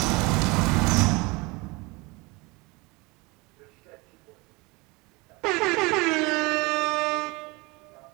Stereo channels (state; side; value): quieter; left; 25.5 dB